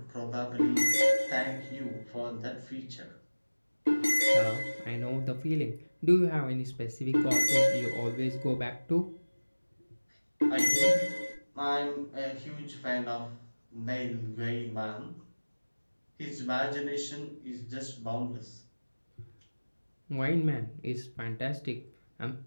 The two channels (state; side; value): inverted; both; correlation -1.00